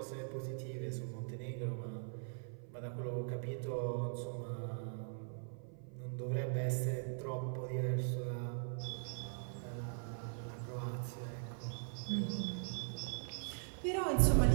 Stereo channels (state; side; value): silent; left; 51 dB below the other